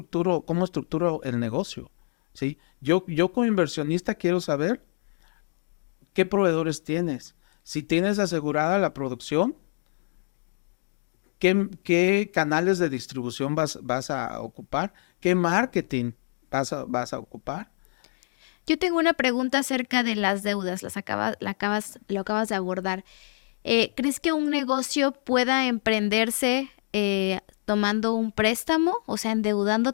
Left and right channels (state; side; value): silent; right; digital silence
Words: el negocio? ¿Sí? Yo como inversionista quiero saber qué proveedores tienes. Si tienes asegurada la producción, ¿qué canales de distribución vas a ocupar? ¿Qué marketing vas a ocupar? Yo tengo una pregunta acerca de las deudas, lo acabas de abordar. ¿Crees que un negocio pueda emprenderse tomando un préstamo? O sea,